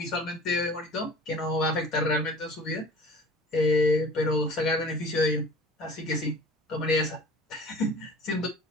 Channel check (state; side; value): normal; both; correlation 0.43